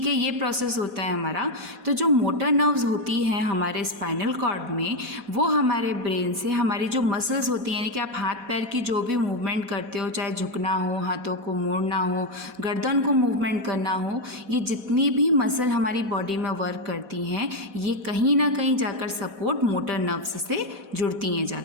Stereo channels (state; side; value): late; left; 4.1 ms